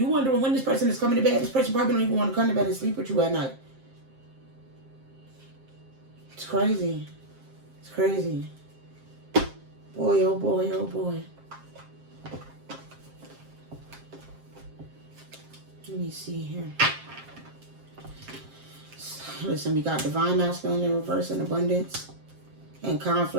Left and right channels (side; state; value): left; late; 7.5 ms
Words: wondering when this person is coming to bed. This person probably don't even want to come to bed and sleep with you at night. It's crazy. It's crazy. Boy, oh boy, oh boy. Let me see here. Listen, we got divine masculine in reverse and abundance and